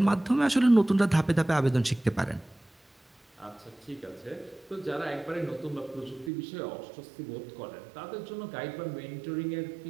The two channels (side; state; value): left; drops out; at 6.3 s